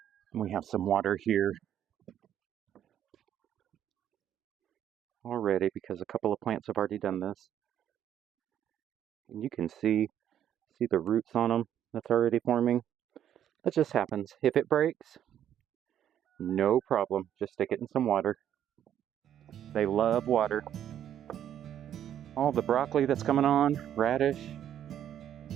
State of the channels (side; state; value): left; quieter; 10.4 dB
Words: we have some water here already because a couple of plants have already done this. And you can see the roots on them that's already forming. That just happens. If it breaks, no problem. Just stick it in some water. They love water. All the broccoli that's coming on, radish.